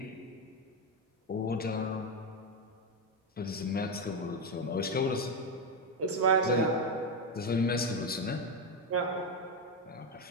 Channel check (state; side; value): normal; both; correlation 0.09